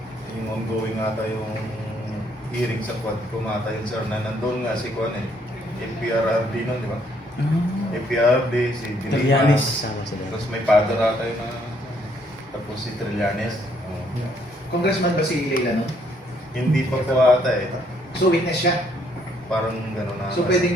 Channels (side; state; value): both; normal; correlation 0.68